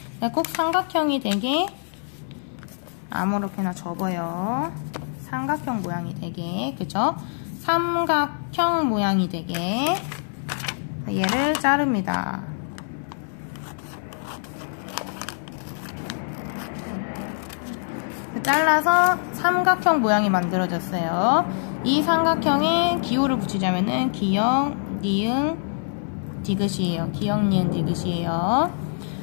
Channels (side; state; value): right; silent; digital silence